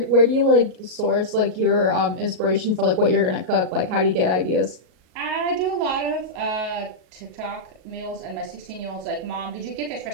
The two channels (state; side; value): late; left; 38 ms